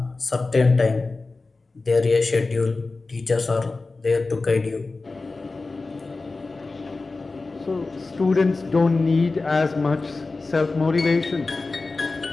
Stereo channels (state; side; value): quieter; right; 3.6 dB